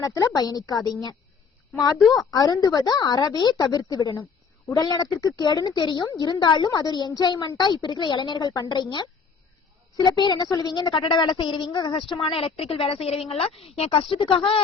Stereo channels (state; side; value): quieter; right; 5.6 dB